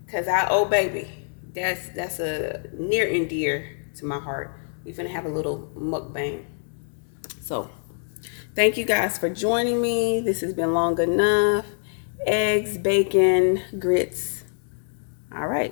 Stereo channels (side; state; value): right; silent; digital silence